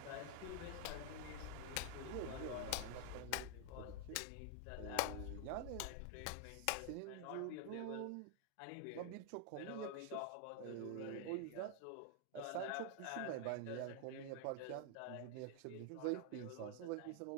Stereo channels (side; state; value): both; different; correlation 0.00